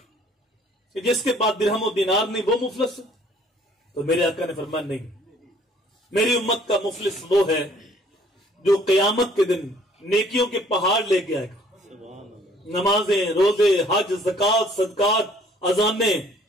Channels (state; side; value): normal; both; correlation 0.59